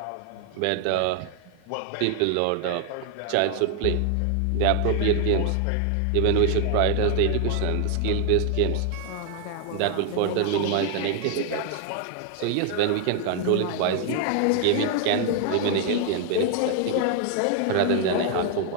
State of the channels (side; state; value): both; different; correlation 0.00